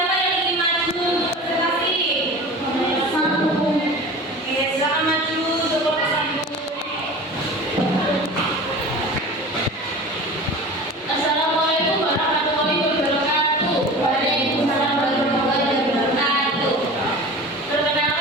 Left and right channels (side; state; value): both; normal; correlation 0.36